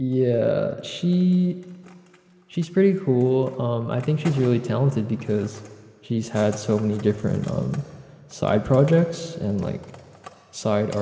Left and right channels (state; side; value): identical; both; correlation 1.00